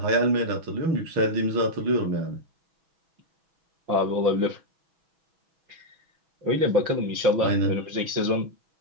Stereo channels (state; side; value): late; left; 6.1 ms